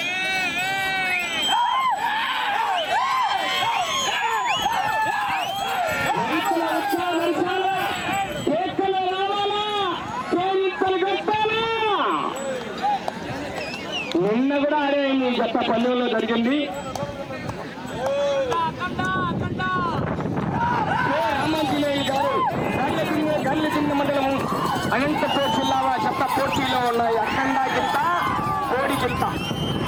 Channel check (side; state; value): both; identical; correlation 1.00